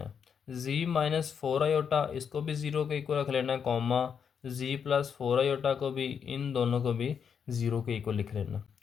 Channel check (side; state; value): right; quieter; 7.1 dB